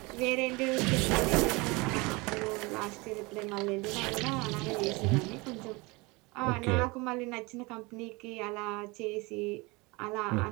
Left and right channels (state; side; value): quieter; left; 25.4 dB